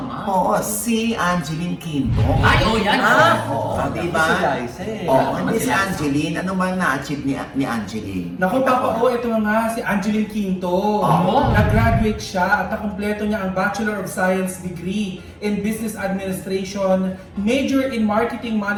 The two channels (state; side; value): identical; both; correlation 1.00